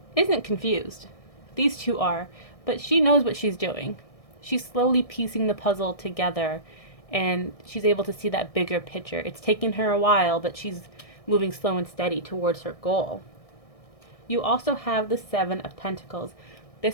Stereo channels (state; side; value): late; right; 1.6 ms